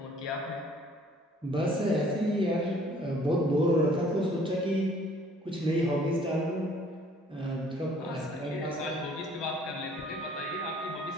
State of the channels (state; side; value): normal; both; correlation 0.57